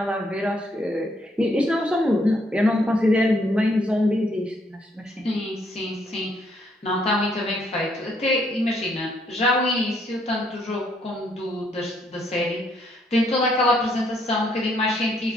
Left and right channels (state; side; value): normal; both; correlation 0.70